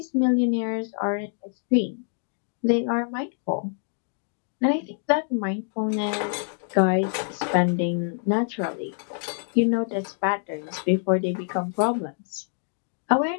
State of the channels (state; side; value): silent; right; digital silence